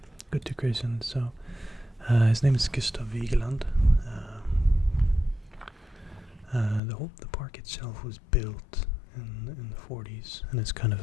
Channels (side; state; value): right; drops out; at 6.8 s